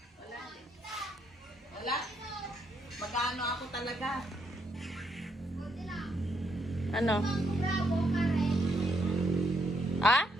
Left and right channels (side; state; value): both; normal; correlation 0.75